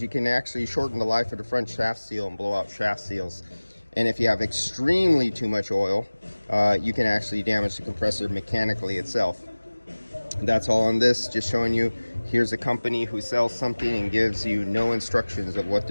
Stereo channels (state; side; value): inverted; both; correlation -1.00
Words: you can actually shorten the life of the front shaft seal and blow out shaft seals. And if you have extremely too much oil, you can actually damage the compressor mechanically itself. That's all on this, just showing you, here's a company who sells something and gives you no instructions of what